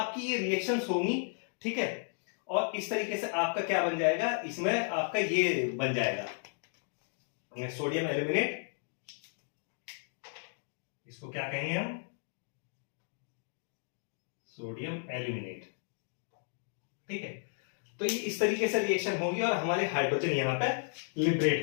ये रिएक्शंस होंगी। ठीक है, और इस तरीके से आपका क्या बन जाएगा, इसमें आपका ये बन जाएगा, ये सोडियम एल्यूमिनेट, इसको क्या कहेंगे हम, सोडियम एल्यूमिनेट। ठीक है, तो ये इस तरीके से रिएक्शन होगी और हमारे हाइड्रोजन यहां पे लिबरेट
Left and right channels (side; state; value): right; silent; 55 dB below the other